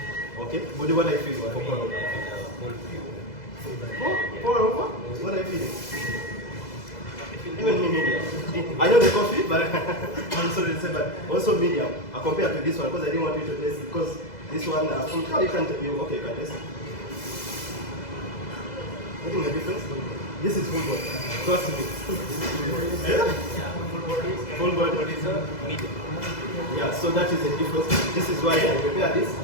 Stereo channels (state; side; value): late; right; 2.0 ms